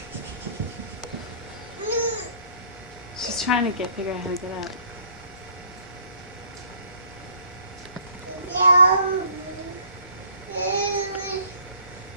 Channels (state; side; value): inverted; both; correlation -0.55